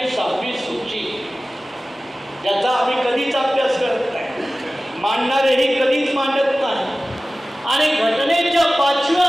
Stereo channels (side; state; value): both; normal; correlation 0.97